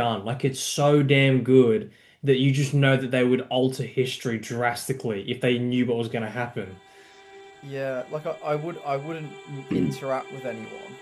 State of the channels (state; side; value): identical; both; correlation 1.00